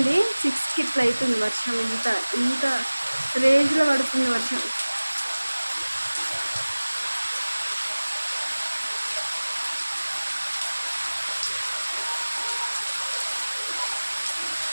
6కి ఇట్లా అవుతుంది వర్షం. ఇంత రేంజ్లో పడుతుంది వర్షం.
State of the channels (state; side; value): inverted; both; correlation -1.00